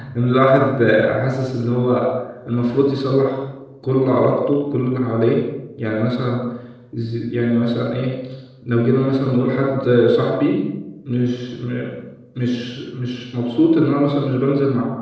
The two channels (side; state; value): both; identical; correlation 1.00